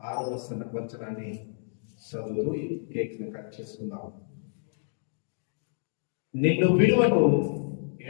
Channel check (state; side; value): silent; right; digital silence